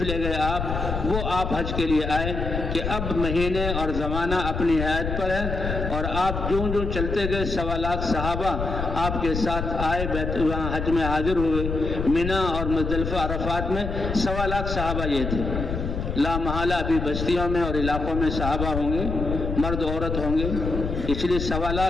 لے گئے آپ، وہ آپ حج کے لیے آئے کہ اب مہینے اور زمانہ اپنی حیات پر ہے، اور آپ جوں جوں چلتے گئے 1.25 لاکھ صحابہ آپ کے ساتھ آئے، وہاں حج میں حاضر ہوئے۔ مینا اور مزدلفہ عرفات میں 1.25 لاکھ صحابہ یہ تھے۔ لا محالہ ابھی بستیوں میں اور علاقوں میں صحابہ ہوں گے، مرد عورت ہوں گے، اس لیے 1.25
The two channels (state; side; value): noise; left; rumble, 4 dB below the sound